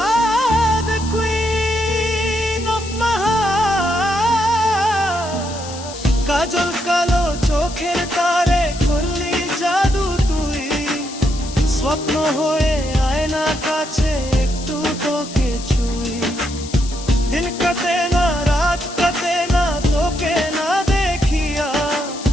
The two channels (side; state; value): left; noise; hiss, 13 dB below the sound